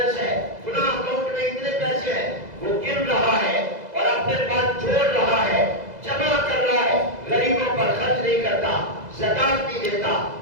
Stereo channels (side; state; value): left; late; 2.0 ms